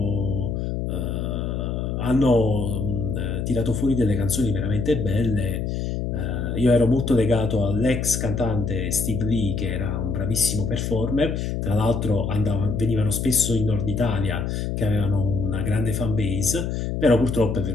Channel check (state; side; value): noise; left; hum, 2 dB below the sound